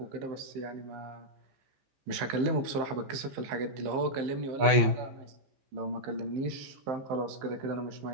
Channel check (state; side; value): late; left; 15 ms